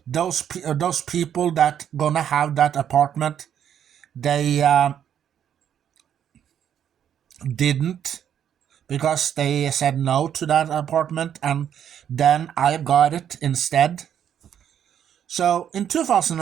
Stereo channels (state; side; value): quieter; left; 9.3 dB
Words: those people that gonna have that apartment, they didn't, because they said no to that apartment, and then I got it instead. So in